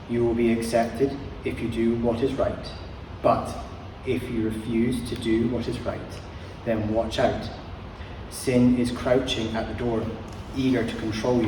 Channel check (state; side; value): identical; both; correlation 1.00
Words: You will be accepted if you do what is right, but if you refuse to do what is right, then watch out. Sin is crouching at the door, eager to control